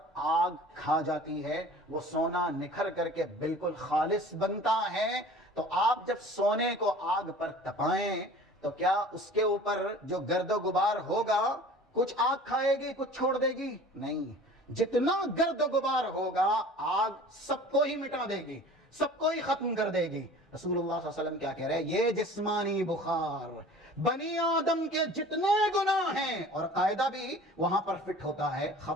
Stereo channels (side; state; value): both; normal; correlation 0.44